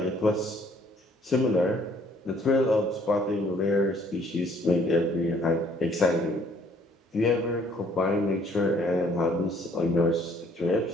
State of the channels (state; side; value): normal; both; correlation 0.61